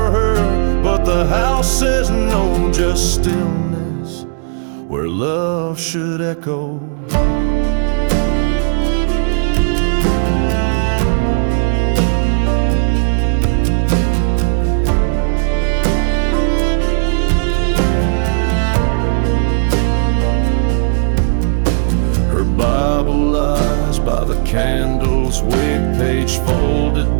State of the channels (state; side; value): silent; left; digital silence